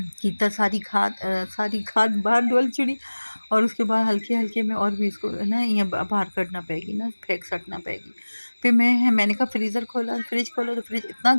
सारी खाद बाहर डोल छुड़ी और उसके बाद हल्के-हल्के में और भी इसको ना ये बाहर कढ़ना पड़ेगी ना, फेंक सटना पड़ेगी। फिर मैंने कहा फ्रिज खोला तो फ्रिज इतना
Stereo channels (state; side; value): inverted; both; correlation -1.00